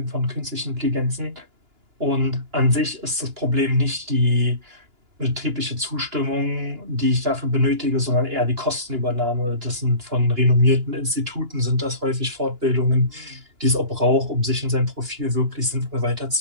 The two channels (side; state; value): left; late; 2.9 ms